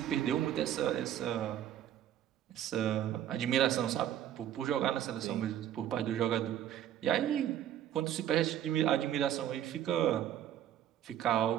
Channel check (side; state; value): left; quieter; 11.0 dB